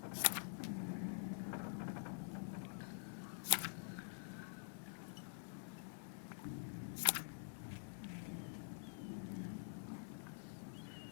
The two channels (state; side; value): silent; right; digital silence